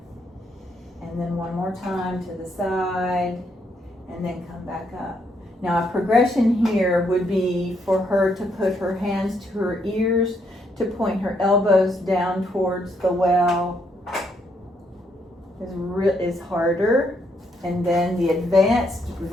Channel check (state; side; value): normal; both; correlation 0.74